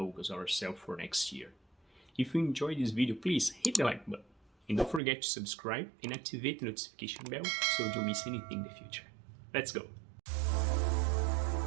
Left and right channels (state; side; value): drops out; left; at 5.0 s